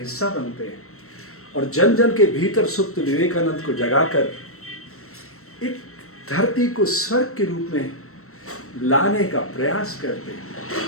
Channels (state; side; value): late; right; 0.63 ms